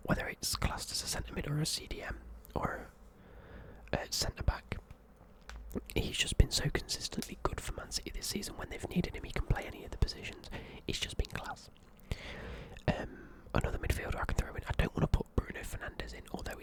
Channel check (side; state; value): both; identical; correlation 1.00